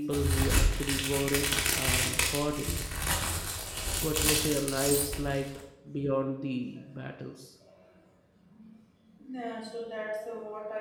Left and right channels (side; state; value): both; identical; correlation 1.00